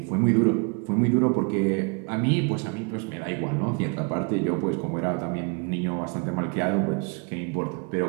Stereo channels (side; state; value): left; quieter; 34.2 dB